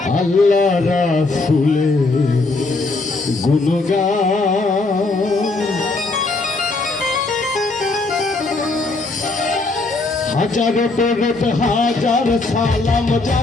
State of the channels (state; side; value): quieter; right; 3.4 dB